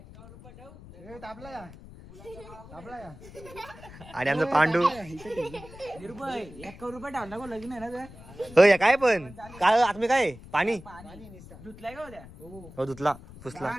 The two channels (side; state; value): left; noise; rumble, 18 dB below the sound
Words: आणि आमचं पांडू. होय काय पण काय आत्मी काय पाणी हो धुतला पुसला.